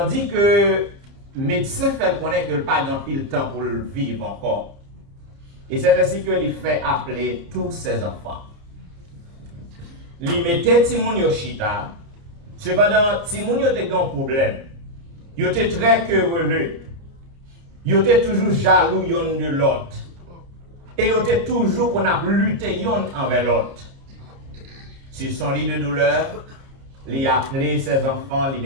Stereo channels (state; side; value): late; left; 30 ms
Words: que le médecin fait connaître que le pas d'un pile temps pour le vivre encore. Et c'est ainsi que il fait appeler tous ses enfants. Il mettait Timoun Yoshita. Cependant, Timoun était un problème. Il était très querelleux. Il était toujours jaloux l'un de l'autre. Et il était toujours qu'on a lutté l'un envers l'autre. Sur son lit de douleur, il a appelé ses enfants, il